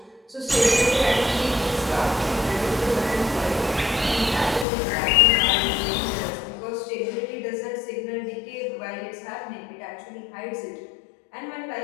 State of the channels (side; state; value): right; drops out; at 4.7 s